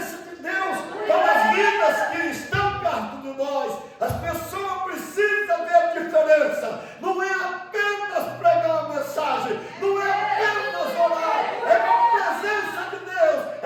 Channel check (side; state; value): both; identical; correlation 1.00